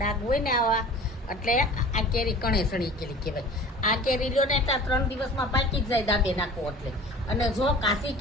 હોય ને આવા એટલે આ કેરી કણે સડી ગયેલી કહેવાય. આ કેરી લ્યો ને એટલે 3 દિવસમાં પાકી જ જાય દાબે નાખો એટલે. અને જો કાચી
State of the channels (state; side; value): normal; both; correlation 0.42